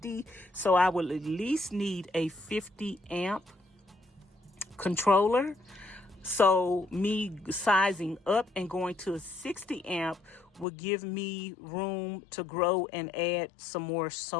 So I will at least need a 50 amp controller. So me sizing up and going to a 60 amp will give me room to grow and add some more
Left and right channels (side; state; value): right; drops out; at 10.7 s